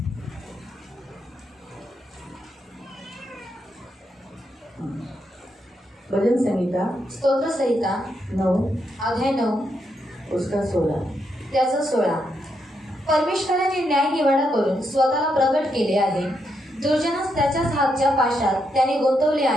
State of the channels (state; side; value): normal; both; correlation 0.80